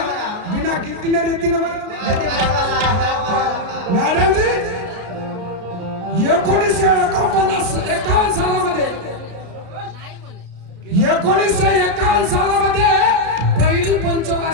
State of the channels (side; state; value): left; late; 33 ms